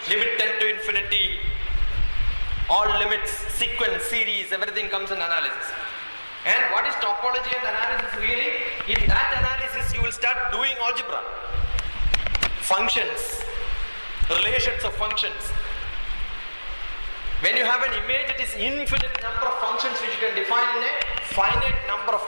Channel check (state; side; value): inverted; both; correlation -1.00